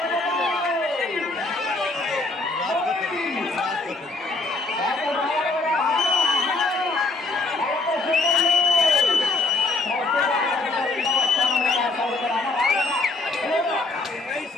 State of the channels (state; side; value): quieter; right; 3.3 dB